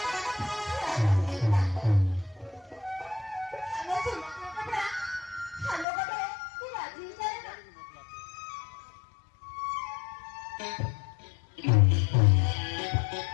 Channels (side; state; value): right; drops out; at 5.9 s